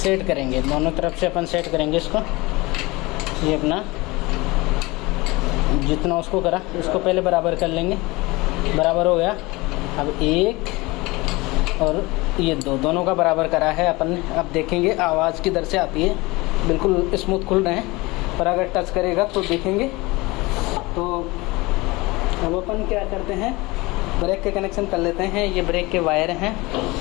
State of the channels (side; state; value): right; quieter; 22.8 dB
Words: सेट करेंगे। दोनों तरफ से अपन सेट करेंगे इसको। ये अपना जितना उसको करा उसको पहले बराबर कर लेंगे, बराबर हो गया। अब 1 और ये 2 दोनों का बराबर करा है अपन ने। अब देखेंगे आवाज़ किधर से आती है, बिल्कुल स्मूथ खुल रहे हैं, पर अगर टच करेगा तो देखेंगे। तो अब अपन क्या करते हैं, ब्रेक के कनेक्शन कर लेते हैं। ये ब्रेक के वायर हैं,